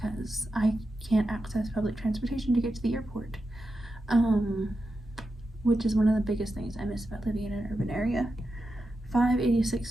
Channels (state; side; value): normal; both; correlation 0.89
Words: I can't access public transportation to get to the airport, which is one of the biggest things I miss about living in an urban area.